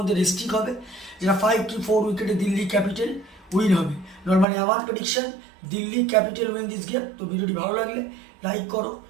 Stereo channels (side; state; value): left; drops out; at 4.5 s